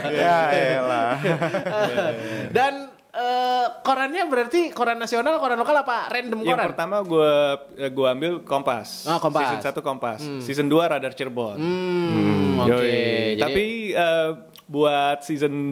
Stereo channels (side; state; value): both; identical; correlation 1.00